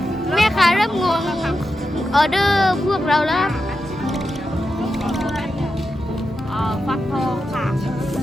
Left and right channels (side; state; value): both; normal; correlation 0.89